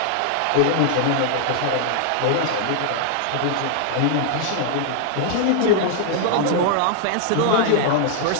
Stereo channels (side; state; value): both; different; correlation -0.01